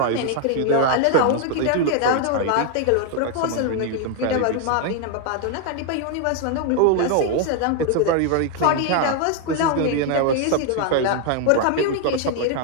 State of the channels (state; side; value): different; both; correlation 0.00